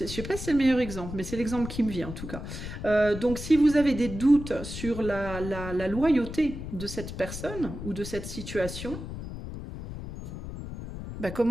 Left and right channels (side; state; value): left; noise; rumble, 9 dB below the sound